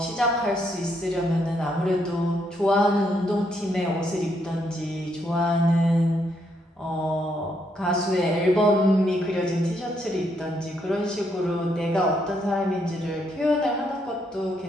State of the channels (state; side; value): normal; both; correlation 0.75